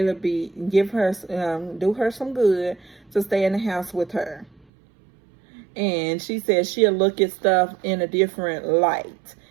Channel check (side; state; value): left; drops out; at 4.7 s